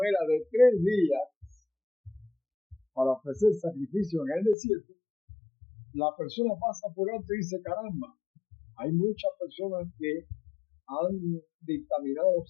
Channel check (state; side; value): drops out; right; at 4.5 s